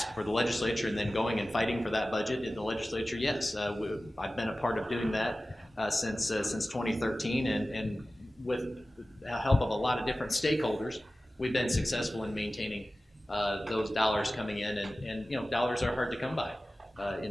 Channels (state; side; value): normal; both; correlation 0.96